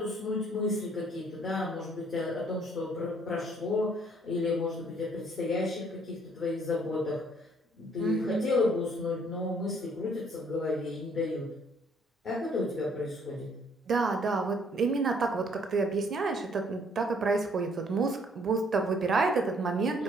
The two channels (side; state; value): both; normal; correlation 0.63